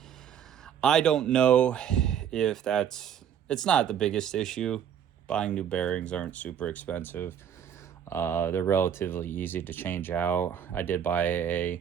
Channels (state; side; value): quieter; left; 9.0 dB